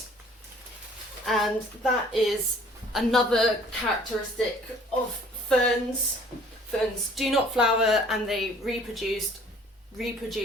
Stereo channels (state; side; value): normal; both; correlation 0.54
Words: and that is another characteristic of ferns. Ferns do not flower and they reproduce